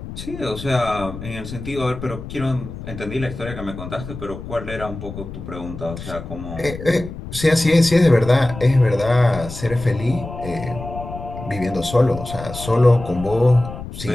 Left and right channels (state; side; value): noise; left; rumble, 11 dB below the sound